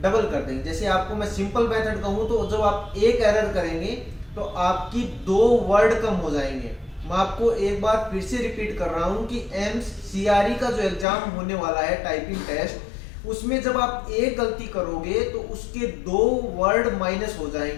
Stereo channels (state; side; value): drops out; right; at 11.1 s